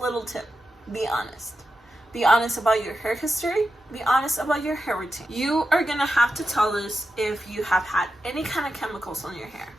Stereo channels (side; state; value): both; normal; correlation 0.89